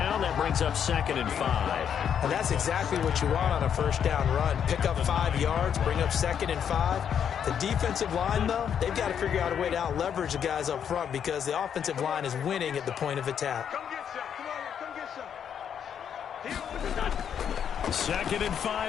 That brings up 2nd and 5. And that's exactly what you want on a 1st down run. Pick up 5 yards, bring up 2nd and 5. The defensive line, though, they've got to figure out a way to out-leverage the guys up front because the offensive line is winning at the point of attack. 2nd and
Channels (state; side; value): quieter; right; 8.3 dB